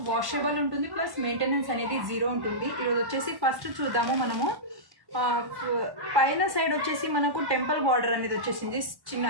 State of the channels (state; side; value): late; left; 1.1 ms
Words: వాషబుల్ ఉంటుంది, ప్లస్ మెయింటెనెన్స్ అనేది జీరో ఉంటుంది. ఈరోజు వచ్చేసి ఫస్ట్ చూద్దాము మనము. పైన సైడ్ వచ్చేసి మనకు టెంపుల్ బార్డర్ అనేది వచ్చేసింది